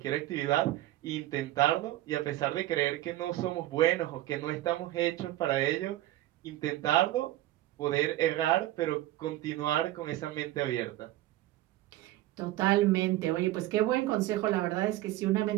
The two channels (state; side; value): quieter; left; 15.4 dB